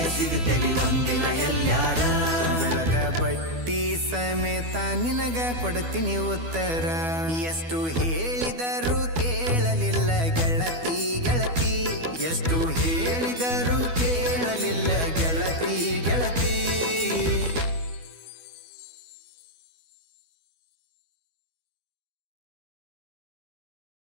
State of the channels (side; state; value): left; late; 12 ms